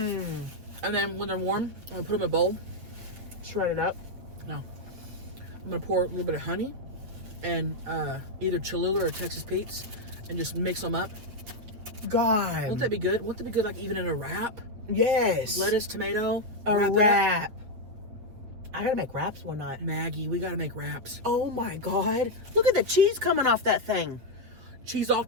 And then when they're warm, I'm going to put them in a bowl. Shred it up. No. I'm going to pour a little bit of honey and either Cholula or Texas Pete's and just mix them up. God. Won't that be good? Won't that be good like even in a wrap? Yes. Lettuce, tomato, A wrap it up. wrap. I gotta make wraps one night. Maggie, we got to make wraps. Oh my God. Look at the cheese coming off that thing. Cheese all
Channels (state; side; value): late; left; 8.2 ms